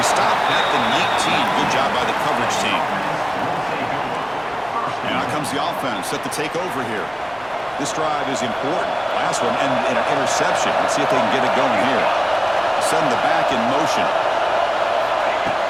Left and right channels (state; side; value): noise; left; rumble, 30 dB below the sound